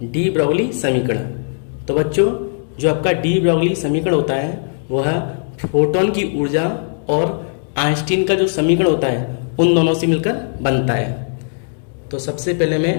डी ब्रॉगली समीकरण। तो बच्चों, जो आपका डी ब्रॉगली समीकरण होता है वह फोटोन की ऊर्जा और आइंस्टीन का जो समीकरण होता है उन दोनों से मिलकर बनता है। तो सबसे पहले मैं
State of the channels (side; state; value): right; silent; digital silence